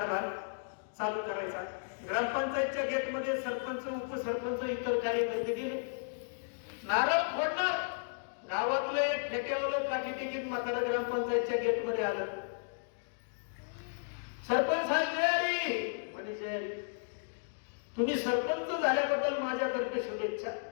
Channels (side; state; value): right; silent; digital silence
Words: चालू करायचा. ग्रामपंचायतच्या गेटमध्ये सरपंच उपसरपंच इतर कार्यकर्ते गेले, नारळ फोडणार. गावातलं एक फेट्यावलं काठी तिकीट मात्र ग्रामपंचायतच्या गेटमध्ये आलं. सरपंच साहेब जय म्हणे, जय. तुम्ही सरपंच झाल्याबद्दल माझ्यातर्फे शुभेच्छा.